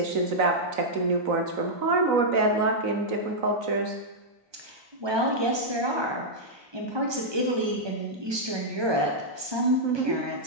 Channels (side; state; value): left; late; 1.2 ms